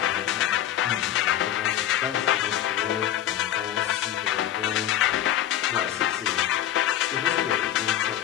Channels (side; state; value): right; quieter; 11.6 dB